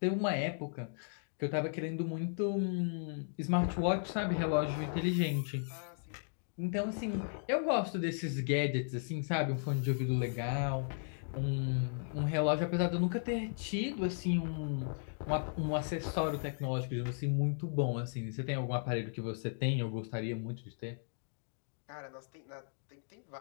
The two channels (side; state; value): right; silent; digital silence